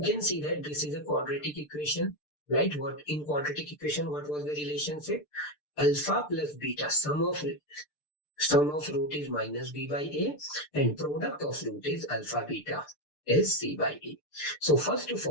see that this is a quadratic equation, right? What in quadratic equation, what was the relationship? Alpha plus beta, sum of root is minus b by a, and product of root is alpha beta is c by a. So first of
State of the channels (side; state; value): right; late; 6.7 ms